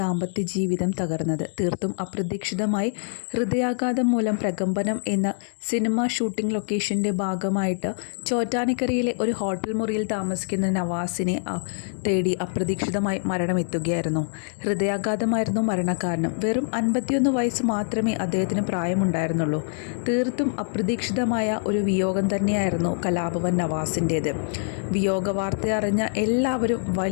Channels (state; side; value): silent; right; 62 dB below the other